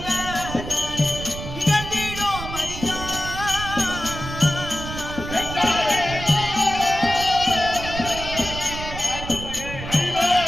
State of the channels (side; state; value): right; noise; rumble, 8 dB below the sound